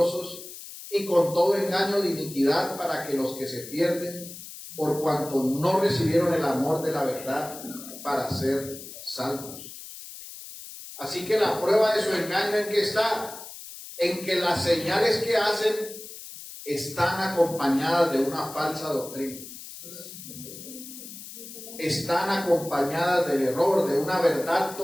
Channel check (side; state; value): left; noise; hiss, 13 dB below the sound